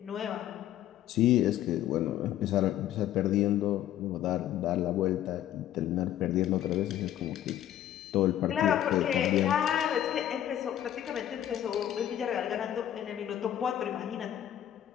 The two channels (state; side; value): quieter; right; 11.7 dB